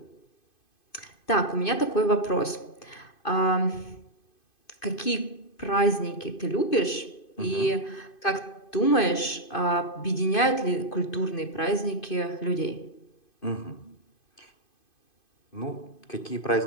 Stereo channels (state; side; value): late; right; 2.5 ms